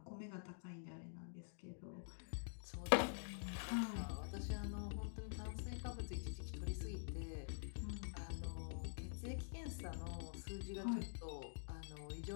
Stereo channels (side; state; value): right; silent; digital silence